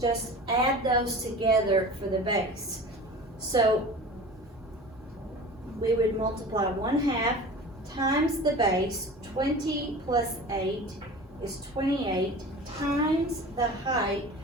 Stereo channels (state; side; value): normal; both; correlation 0.37